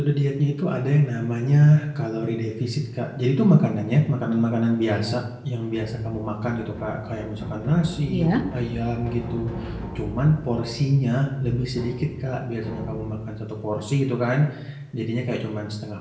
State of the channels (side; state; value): both; identical; correlation 1.00